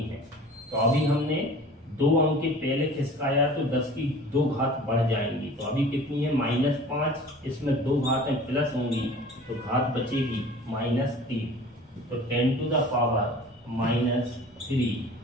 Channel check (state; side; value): normal; both; correlation 0.44